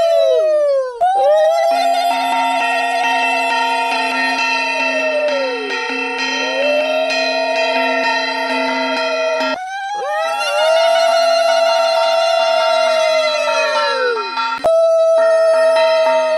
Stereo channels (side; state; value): both; identical; correlation 1.00